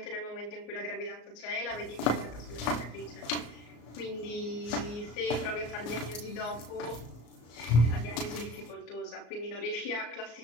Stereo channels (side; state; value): right; late; 34 ms